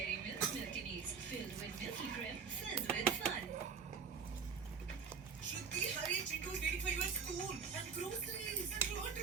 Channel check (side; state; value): left; quieter; 6.1 dB